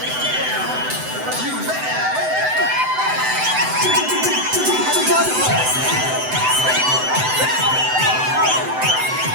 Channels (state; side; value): late; left; 7.9 ms